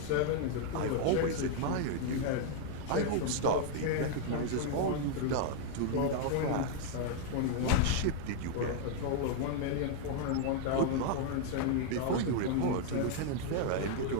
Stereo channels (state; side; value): different; both; correlation 0.00